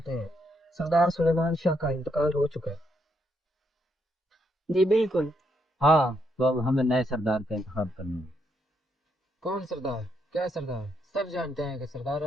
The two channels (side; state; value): both; normal; correlation 0.77